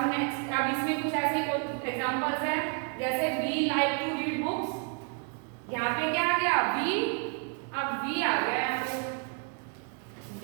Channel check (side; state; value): left; quieter; 38.1 dB